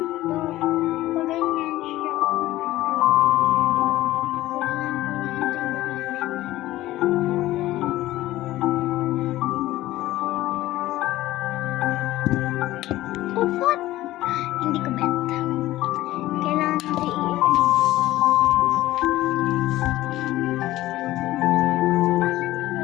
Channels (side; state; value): right; quieter; 16.0 dB